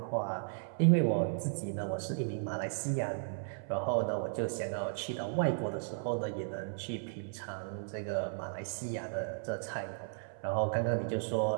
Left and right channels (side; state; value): left; silent; 54 dB below the other